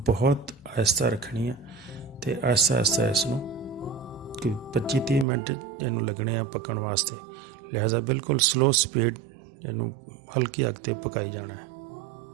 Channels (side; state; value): left; drops out; at 5.2 s